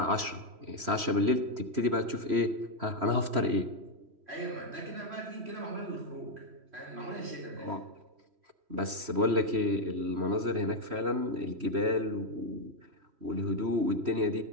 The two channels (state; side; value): late; left; 3.1 ms